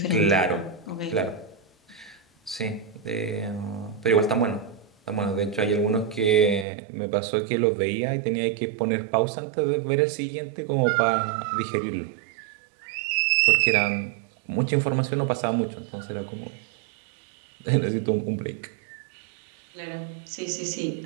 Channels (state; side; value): drops out; left; at 6.7 s